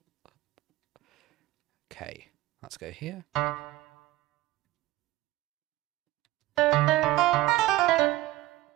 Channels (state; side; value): quieter; left; 17.2 dB